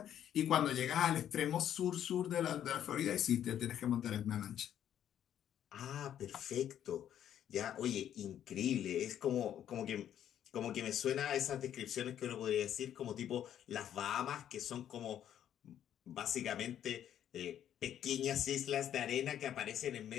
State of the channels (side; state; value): right; quieter; 10.4 dB